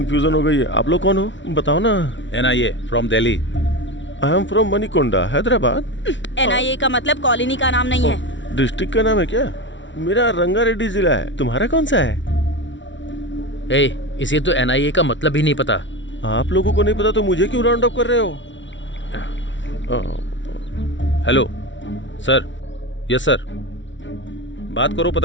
हो गई है। आप लोग कौन हो? बताओ ना। NIA from Delhi. I am from Manikonda, Hyderabad. NIA का मतलब कॉलोनी का नाम नहीं है। डिस्ट्रिक्ट का नाम है क्या? मेरा रंगारेड्डी जिला है। तुम्हारा कौन सा है? इसे तो एनआईए का मतलब ही नहीं पता। आप लोगों को नहीं पता तो मुझे क्यों राउंड अप कर रहे हो? Hello sir. यस सर, बात करो,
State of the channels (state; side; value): late; right; 0.55 ms